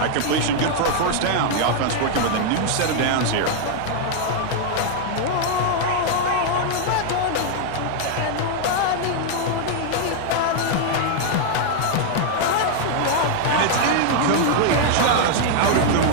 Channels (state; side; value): different; both; correlation 0.00